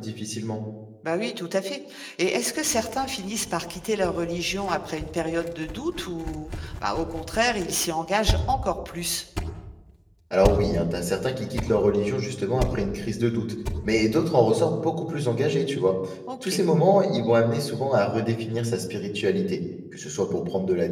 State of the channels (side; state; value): both; identical; correlation 1.00